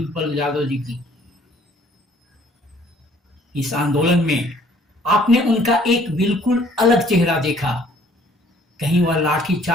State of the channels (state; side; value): normal; both; correlation 0.59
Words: यादव जी की। इस आंदोलन में आपने उनका एक बिल्कुल अलग चेहरा देखा। कहीं वह